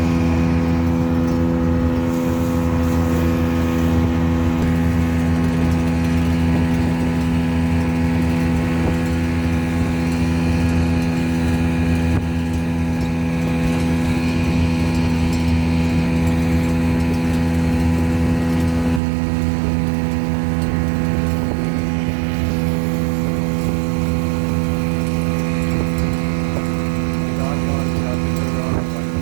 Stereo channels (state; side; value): drops out; left; at 19.0 s